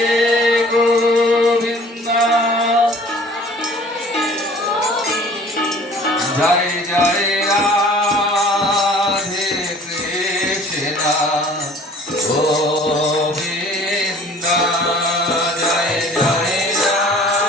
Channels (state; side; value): normal; both; correlation 0.50